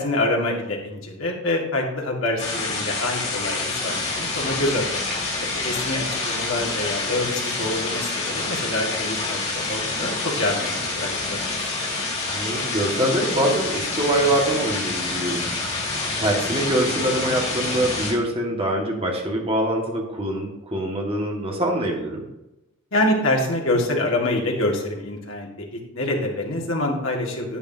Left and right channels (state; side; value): normal; both; correlation 0.18